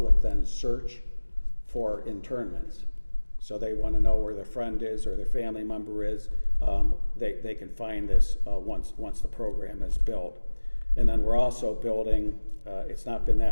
then search for internments. So they want to know where their friend is or their family member is. They can find this once the program is built. And then we're also building, it's not been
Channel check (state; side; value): inverted; both; correlation -1.00